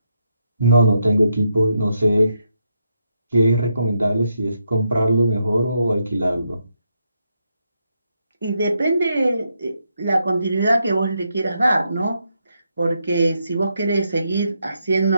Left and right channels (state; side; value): inverted; both; correlation -0.81